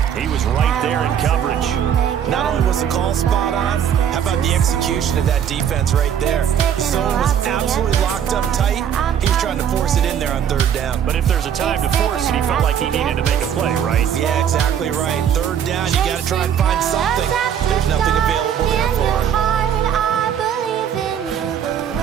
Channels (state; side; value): quieter; left; 8.9 dB